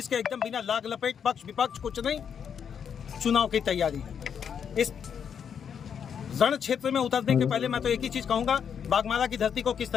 के एकदम बिना लाग लपेट पक्ष विपक्ष कुछ नहीं, चुनाव की तैयारी है। इस रण क्षेत्र में उतरने के पहले मैं तो एक ही चीज कहूंगा, बागमारा की धरती को किस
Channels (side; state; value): right; quieter; 7.6 dB